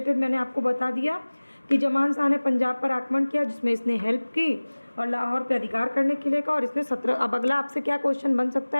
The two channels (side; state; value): both; inverted; correlation -1.00